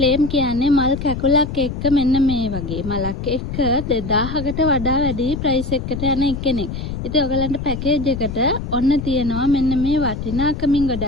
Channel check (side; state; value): left; noise; rumble, 6 dB below the sound